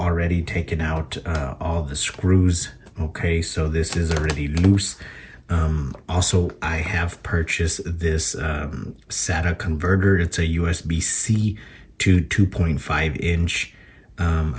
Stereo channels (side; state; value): both; identical; correlation 1.00